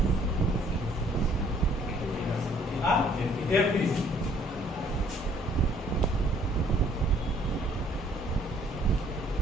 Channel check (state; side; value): normal; both; correlation 0.61